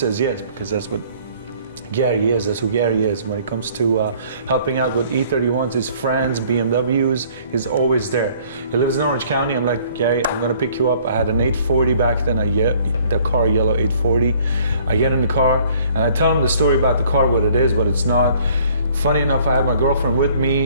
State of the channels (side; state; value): both; inverted; correlation -0.58